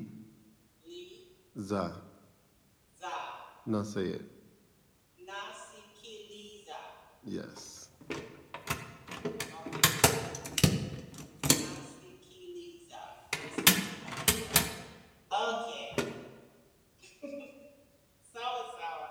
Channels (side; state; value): both; identical; correlation 1.00